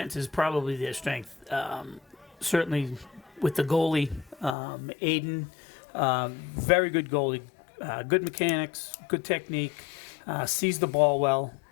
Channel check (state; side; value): drops out; right; at 4.5 s